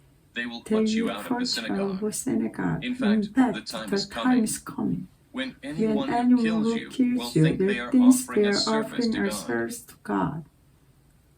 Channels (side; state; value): both; identical; correlation 1.00